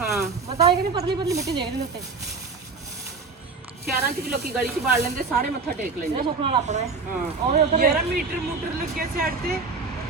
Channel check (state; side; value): quieter; left; 4.3 dB